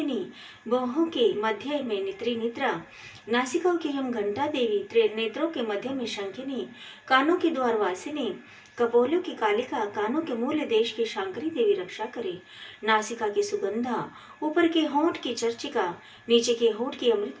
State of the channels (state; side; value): identical; both; correlation 1.00